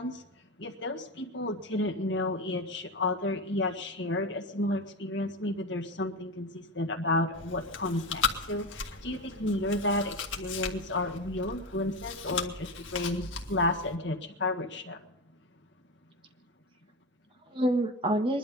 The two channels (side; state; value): both; normal; correlation 0.21